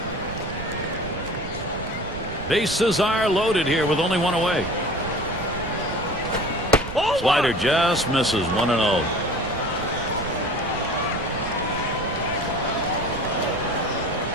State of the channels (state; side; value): noise; right; rumble, 11 dB below the sound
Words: Bases are loaded here with only one away. Slider just misses. 1-0.